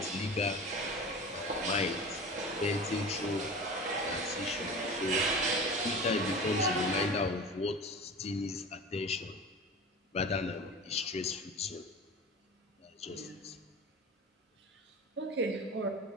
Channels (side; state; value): both; normal; correlation 0.34